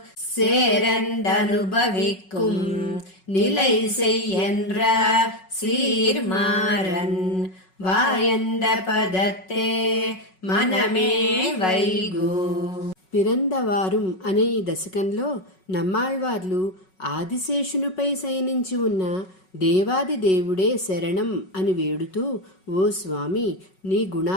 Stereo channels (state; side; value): late; right; 5.4 ms